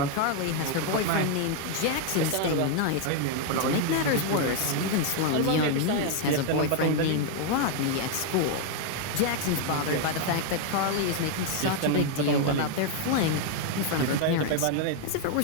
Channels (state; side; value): different; both; correlation 0.00